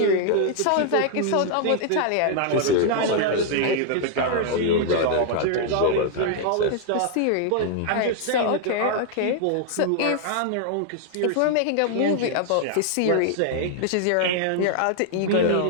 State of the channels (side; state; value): both; different; correlation 0.00